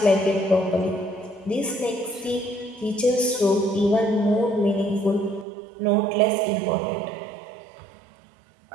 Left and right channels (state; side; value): drops out; left; at 5.5 s